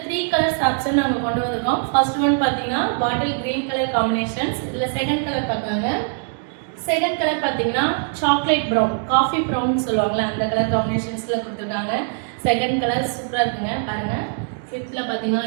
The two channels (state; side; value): silent; left; 57 dB below the other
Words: 3 கலர்ஸ் ஆப்ஷன் நாங்க கொண்டு வந்திருக்கோம். ஃபர்ஸ்ட் ஒன் பாத்தீங்கன்னா பாட்டில் கிரீன் கலர் காம்பினேஷன்ஸ். இதுல செகண்ட் கலர் பார்க்கலாங்க. செகண்ட் கலர் பாத்தீங்கன்னா சாக்லேட் ப்ரௌன், காஃபி ப்ரௌன் சொல்லுவாங்கல்ல, அந்த கலர் காம்பினேஷன்ஸ்ல கொடுத்துருக்காங்க. செகண்ட் கலர் சூப்பரா இருக்குங்க பாருங்க. ஃபிஃப்த்ல பாத்தீங்கன்னா